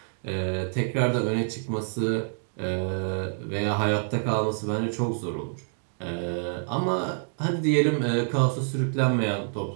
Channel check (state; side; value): silent; left; digital silence